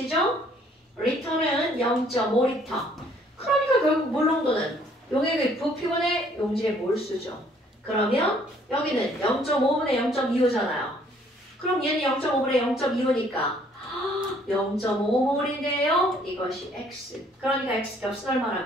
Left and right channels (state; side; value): normal; both; correlation 0.62